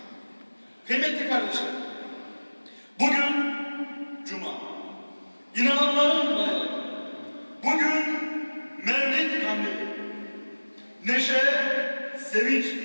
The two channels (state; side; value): inverted; both; correlation -1.00